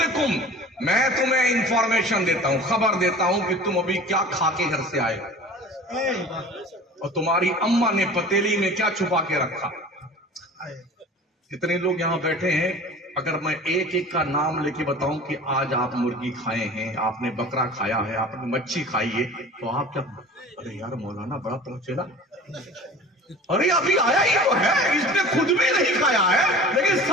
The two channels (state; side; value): normal; both; correlation 0.41